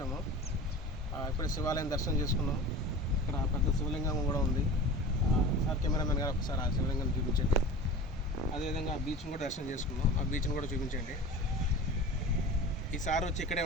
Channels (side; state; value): both; normal; correlation 0.36